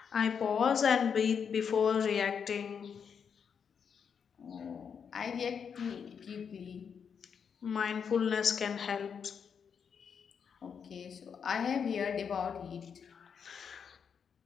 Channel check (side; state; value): right; quieter; 6.9 dB